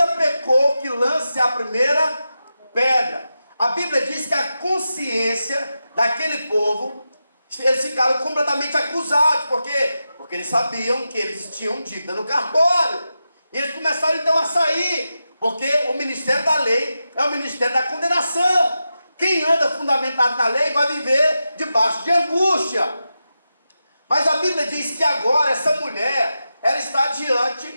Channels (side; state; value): both; inverted; correlation -0.90